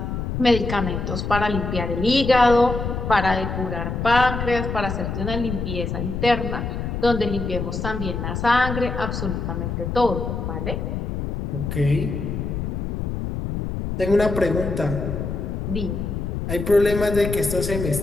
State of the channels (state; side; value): noise; left; rumble, 3 dB below the sound